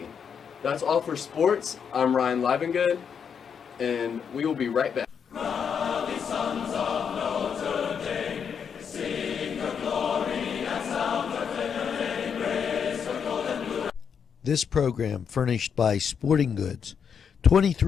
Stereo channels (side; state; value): right; quieter; 7.1 dB